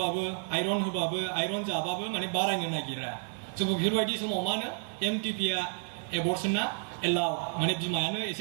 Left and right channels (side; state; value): left; silent; 57 dB below the other